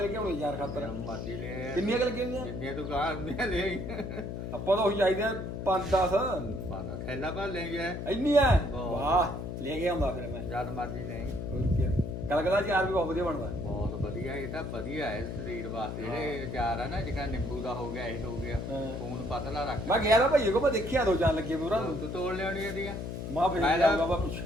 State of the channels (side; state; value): left; noise; hum, 5 dB below the sound